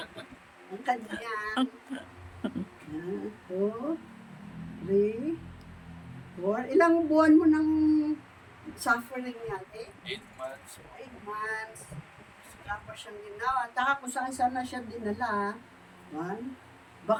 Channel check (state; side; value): identical; both; correlation 1.00